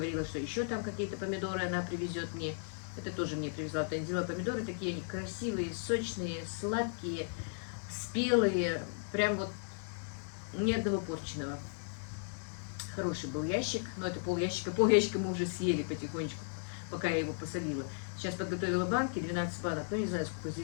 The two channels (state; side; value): silent; right; digital silence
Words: что еще там какие-то помидоры она привезет мне. Это тоже мне привезла Танзила помидоры. Такие они красивые, сочные, сладкие, спелые. Прям вот ни одного порченого. Хороший был ящик, но это пол-ящика мы уже съели потихонечку, пока я его посолила. Сейчас подготовила банки, 12 банок, но не знаю, сколько